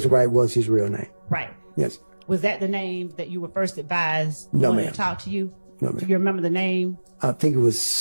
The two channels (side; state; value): both; inverted; correlation -1.00